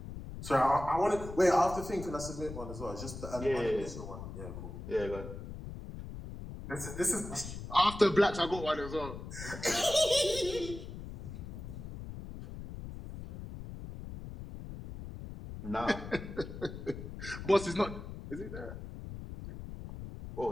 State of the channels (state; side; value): noise; left; rumble, 10 dB below the sound